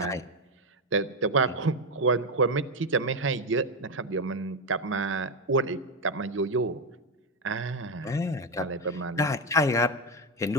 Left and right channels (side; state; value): both; normal; correlation 0.09